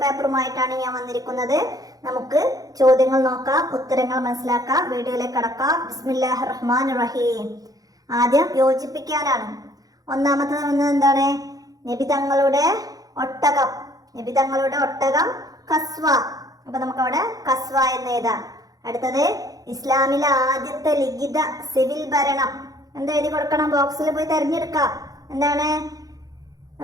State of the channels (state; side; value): late; left; 0.18 ms